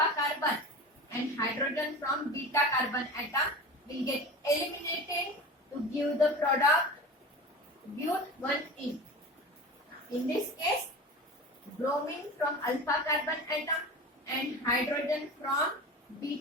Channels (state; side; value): normal; both; correlation 0.32